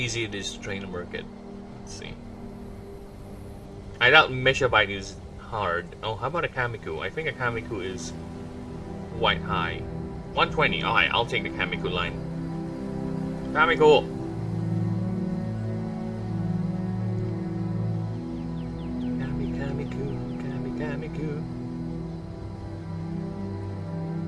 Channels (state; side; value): identical; both; correlation 1.00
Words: it is to train a Merkid. Let's see. I doubt Meshabite is hard. Oh, how about a Kamiku? I think a Kamiku is quite high. 120. Alright, I'll take the Kamiku line. Kamiku! Kamiku.